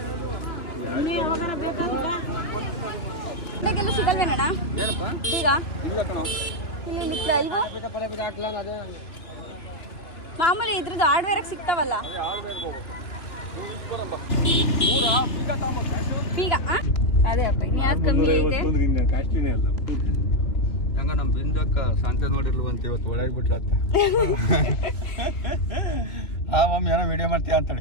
ಇವಾಗೆಲ್ಲ ಸಿಗಲ್ವೇನಣ್ಣ ಏನಪ್ಪ ಬೀಗ? ಇಲ್ಲ ಕಣ. ಇಲ್ಲಿ ಇವು ಮಾಮೂಲಿ ಇದ್ರದ್ದು ಹಾರ್ಡ್ವೇರಾಗ ಸಿಗ್ತಾವಲ್ಲ ಬೀಗ. ಅದೇ ಅಪ್ಪ ಇನ್ನು ಯಾವ್ದು ಕಮ್ಮಿ ಐತೆ? ಹೆಂಗ ನಮ್ಮ ಬಿಂದಕ್ಕ ಶಾಂತ ನೋಡಿರ್ಲವಂತ ಇವತ್ತು ಒಳಗೆ ಬಿಟ್ರತ್ತ ಆ ಮಮ್ಮಿ ಏನೋ ವಿಡಿಯೋ ಮಾಡ್ತೀಯ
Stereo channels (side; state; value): right; late; 2.9 ms